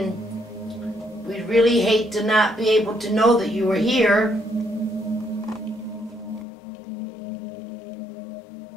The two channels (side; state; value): right; drops out; at 6.5 s